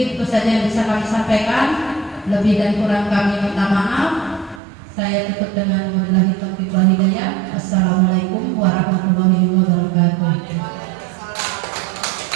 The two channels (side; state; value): left; drops out; at 4.6 s